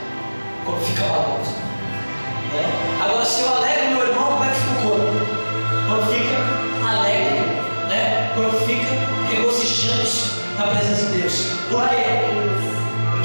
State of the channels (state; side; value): inverted; both; correlation -1.00